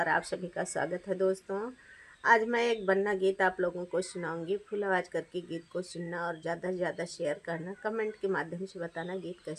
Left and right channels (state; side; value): identical; both; correlation 1.00